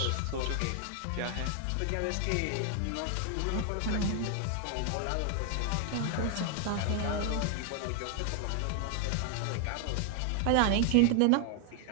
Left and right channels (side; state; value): both; different; correlation 0.00